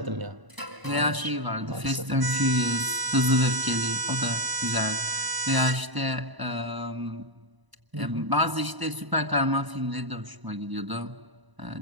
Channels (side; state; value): left; late; 1.0 ms